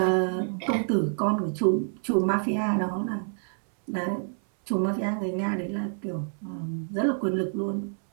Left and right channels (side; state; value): left; silent; 60 dB below the other